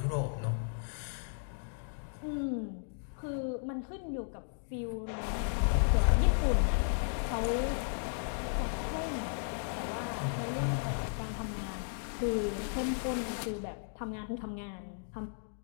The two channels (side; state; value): right; silent; digital silence